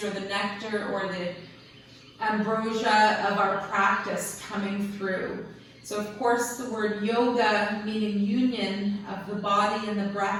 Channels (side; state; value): both; identical; correlation 1.00